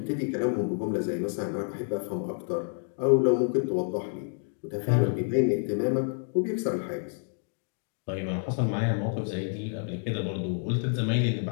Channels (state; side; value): silent; right; 56 dB below the other